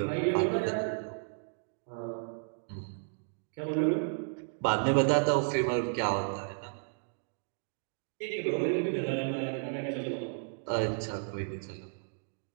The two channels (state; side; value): silent; left; digital silence